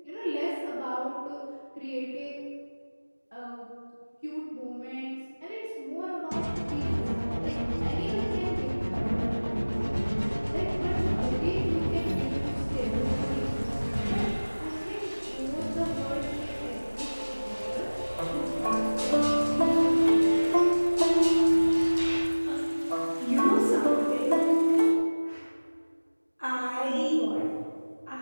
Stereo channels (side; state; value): both; inverted; correlation -1.00